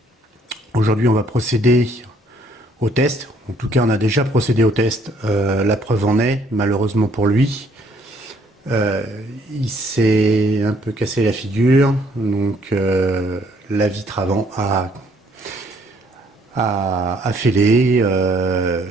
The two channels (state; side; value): normal; both; correlation 0.64